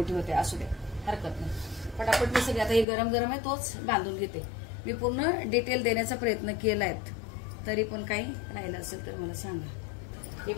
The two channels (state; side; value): drops out; right; at 2.9 s